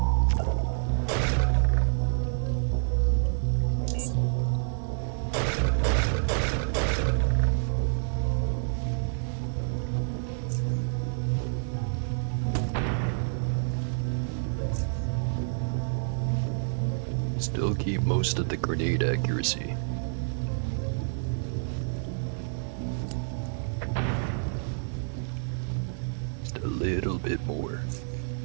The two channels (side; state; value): left; silent; digital silence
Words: Still keep most of the grenade accuracy. Just a little bit more.